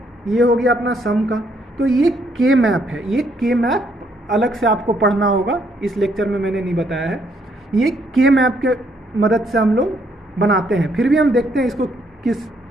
ये हो गया अपना सम का। तो ये के मैप है, ये के मैप अलग से आपको पढ़ना होगा, इस लेक्चर में मैंने नहीं बताया है। ये के मैप के मदद से हम लोग बनाते हैं। फिर भी हम देखते हैं इसको किस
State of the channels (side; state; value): both; normal; correlation 0.70